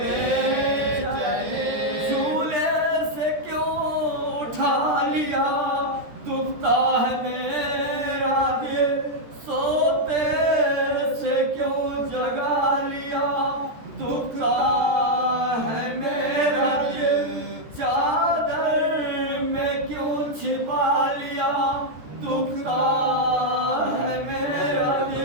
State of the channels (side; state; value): left; late; 13 ms